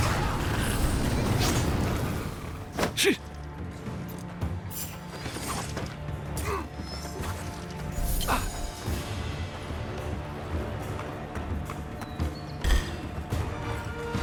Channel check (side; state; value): both; identical; correlation 1.00